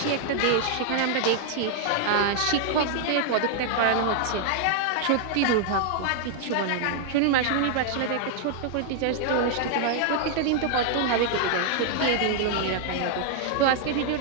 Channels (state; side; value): different; both; correlation 0.00